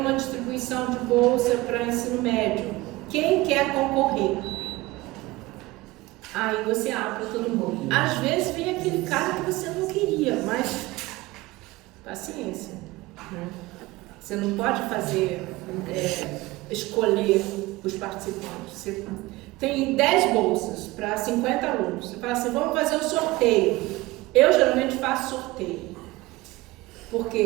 distribuição de bolsa para ensino médio. Quem quer concorrer? Aí você abre para todo mundo. Às vezes vem aquele cara que você não queria, mas paciência, né? Você não pode fazer, escolher os participantes. Você tem 10 bolsas para 50 alunos. Você fala assim, vamos fazer um sorteio. Eu geralmente faço sorteio.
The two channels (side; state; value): left; quieter; 20.1 dB